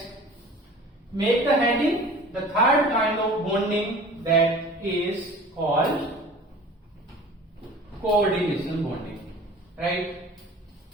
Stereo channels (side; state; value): both; normal; correlation 0.43